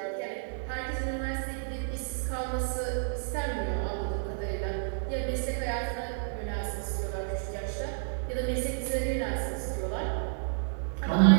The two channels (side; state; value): left; silent; 57 dB below the other